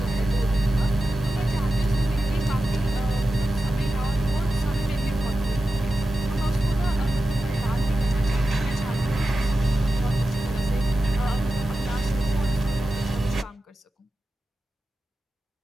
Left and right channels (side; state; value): both; normal; correlation 0.92